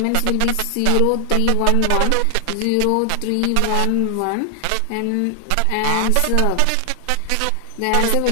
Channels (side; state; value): both; different; correlation 0.00